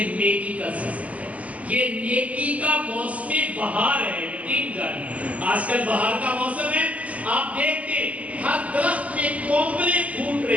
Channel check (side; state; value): left; late; 0.071 ms